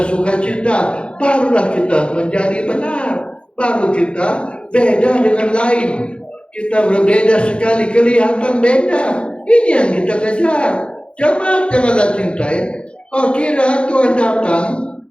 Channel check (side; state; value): right; late; 0.057 ms